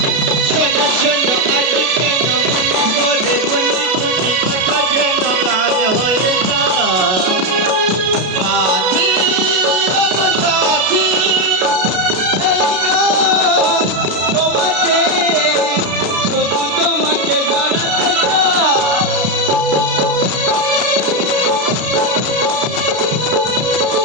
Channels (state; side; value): late; left; 33 ms